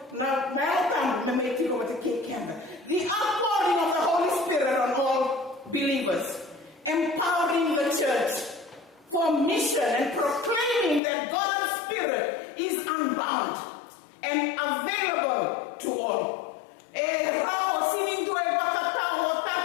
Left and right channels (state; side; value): drops out; right; at 11.0 s